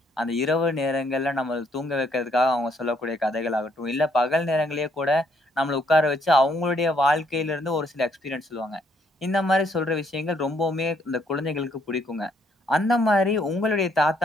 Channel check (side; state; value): both; normal; correlation 0.70